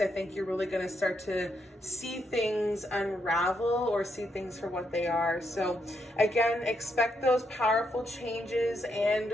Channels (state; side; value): normal; both; correlation 0.78